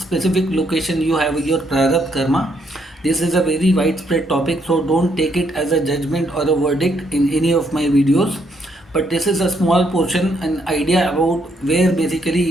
location you have your Prarabdha karma. This is a very widespread topic, so don't take it as a judgment or a verdict in any of my videos, but this is a small portion, an idea about where basically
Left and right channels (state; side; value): normal; both; correlation 0.73